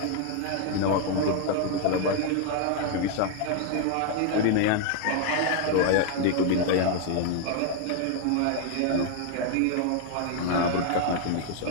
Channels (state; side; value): different; both; correlation 0.01